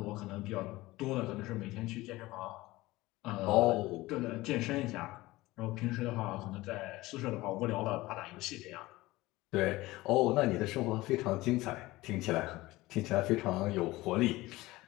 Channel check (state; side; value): quieter; right; 19.2 dB